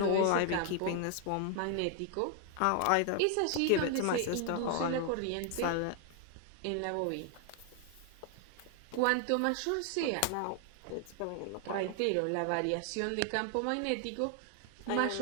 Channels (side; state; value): both; different; correlation 0.00